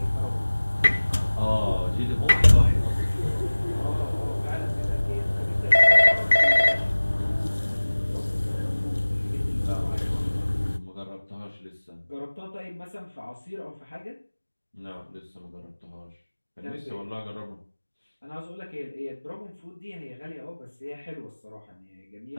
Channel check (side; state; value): both; inverted; correlation -1.00